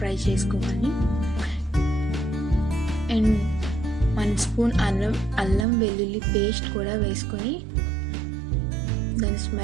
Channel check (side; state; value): left; drops out; at 5.7 s